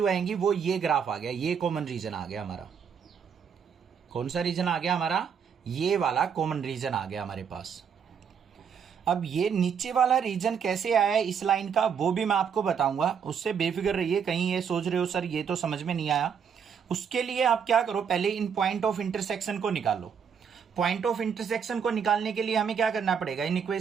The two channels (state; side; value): quieter; left; 7.1 dB